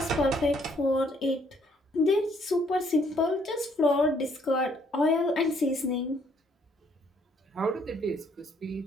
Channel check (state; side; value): normal; both; correlation 0.66